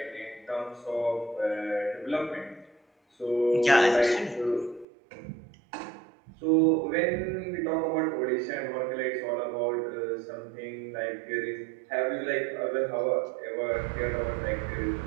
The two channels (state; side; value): drops out; left; at 4.9 s